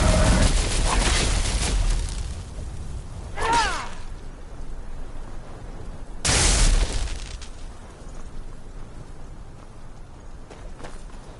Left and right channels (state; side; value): identical; both; correlation 1.00